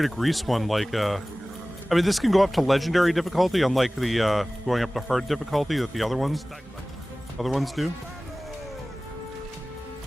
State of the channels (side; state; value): both; normal; correlation 0.98